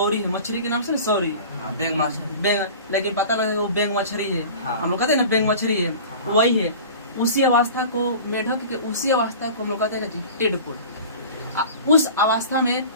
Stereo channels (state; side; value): inverted; both; correlation -0.39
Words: है मछली के नाम से, सौरी बेंग मछली, लेकिन पता लगा वो बेंग मछली है। हम लोग कहते हैं ना बेंग मछली है, वही है। उसी अवस्था को मेढक के, उसी अवस्था को हम लोग कहते हैं टेडपोड। उस अवस्था में